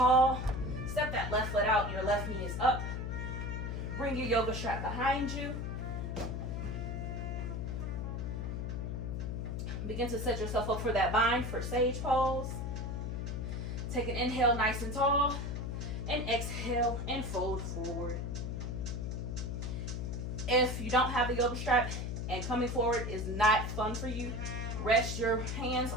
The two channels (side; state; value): left; noise; hum, 3 dB below the sound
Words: Step that left foot out, your left knee is up. Bring your yoga strap behind you. Begin to set yourself up for that bind for sage pose. Take an inhale nice and tall, and exhale and fold forward. If you don't have a yoga strap and coming forward is not fun for you, rest your hands